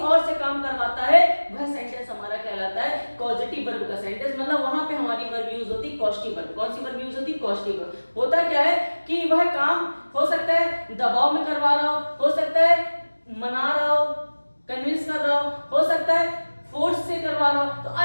से काम करवाता है, वह सेंटेंस हमारा कहलाता है पॉजिटिव वर्ब का सेंटेंस। मतलब वहां पे हमारी वर्ब यूज होती है पॉजिटिव वर्ब। कौन सी वर्ब यूज होती है, पॉजिटिव वर्ब। होता क्या है कि वह काम हो सकता है दबाव में करवा रहा हो सकता है मना रहा हो, कन्विंस कर रहा हो सकता है फोर्स से करवा रहा हो। तो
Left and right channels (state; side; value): inverted; both; correlation -1.00